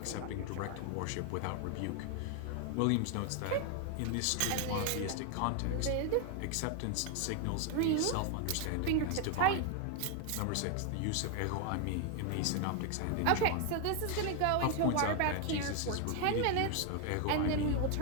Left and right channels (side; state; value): both; different; correlation 0.00